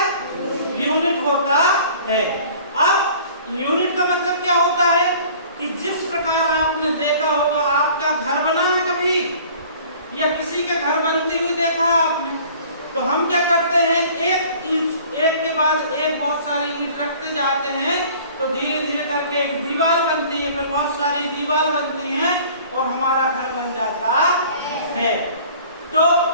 यूनिट होता है। अब यूनिट का मतलब क्या होता है कि जिस प्रकार आपने देखा होगा, आपका घर बना है कभी या किसी के घर बनती हुई देखा आपने, तो हम क्या करते हैं, एक के बाद एक बहुत सारी ईंट रखते जाते हैं, तो धीरे धीरे करके एक दीवार बनती है, फिर बहुत सारी दीवार बनती हैं और हमारा घर बन जाता है। तो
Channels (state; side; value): inverted; both; correlation -0.49